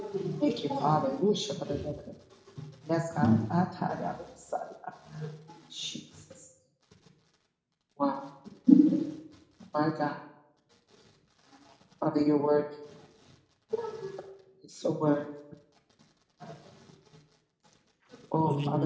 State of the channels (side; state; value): both; identical; correlation 1.00